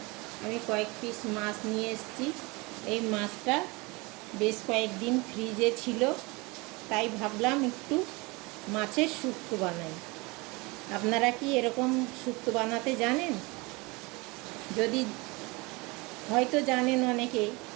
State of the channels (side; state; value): left; quieter; 25.6 dB